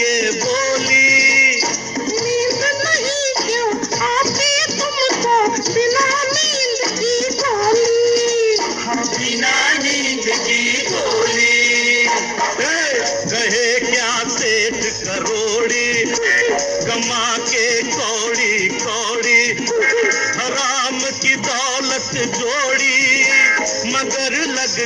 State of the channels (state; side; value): identical; both; correlation 1.00